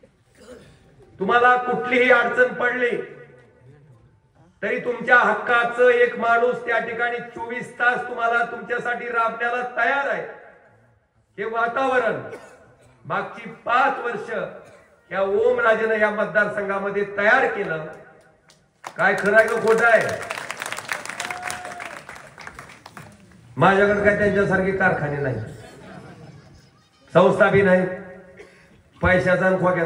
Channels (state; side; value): identical; both; correlation 1.00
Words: तुम्हाला कुठलीही अडचण पडली तरी तुमच्या हक्काचं एक माणूस त्या ठिकाणी 24 तास तुम्हाला तुमच्यासाठी राबण्याला तयार आहे. हे वातावरण मागची 5 वर्ष या ओमराजेनं या मतदारसंघामध्ये तयार केलं. काय खरं आहे का खोटं आहे? माझ्याकडे काय त्यांच्यासारखे कारखाने नाही, संस्था बी नाही, पैशाचा आणि